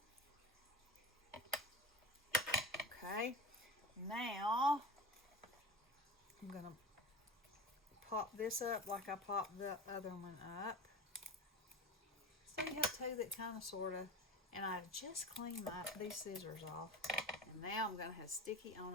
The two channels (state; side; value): normal; both; correlation 0.31